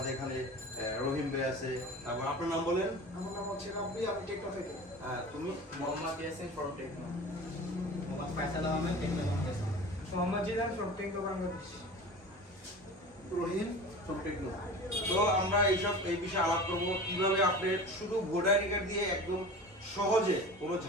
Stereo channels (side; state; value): both; normal; correlation 0.36